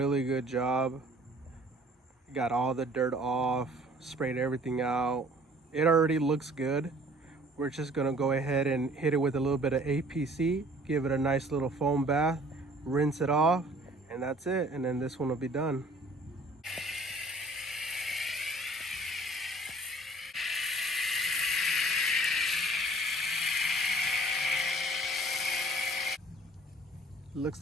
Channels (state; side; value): normal; both; correlation 0.52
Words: good job. Got all the dirt off, sprayed everything out. It already looks good. We're just gonna go ahead and hit it with a little bit of APC, give it a nice little foam bath, rinse it off, and that's it. And then this one will be done.